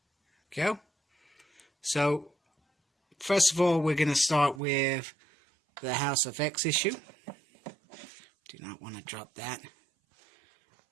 Go. So first of all, we're going to start with the House of X issue. Do not want to drop that.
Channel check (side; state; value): left; drops out; at 4.6 s